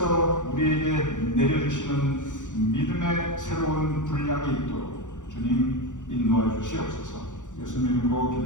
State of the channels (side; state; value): right; late; 0.86 ms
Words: 우리에게 내려주시는 믿음의 새로운 분량이 있도록 주님 인도하여 주시옵소서. 예수님 이름으로